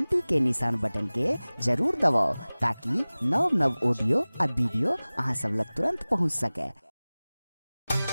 के निशान बटन के जरूर दबाओ ताकि नव नव ऑडियो आ वीडियो अहाँ सब लग तुरंत पहुंच सके।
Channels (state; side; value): inverted; both; correlation -0.99